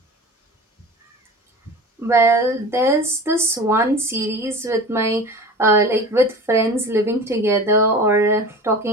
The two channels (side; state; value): both; normal; correlation 0.35